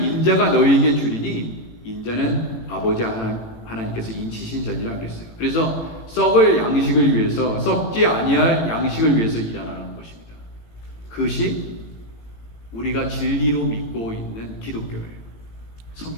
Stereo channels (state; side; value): late; right; 18 ms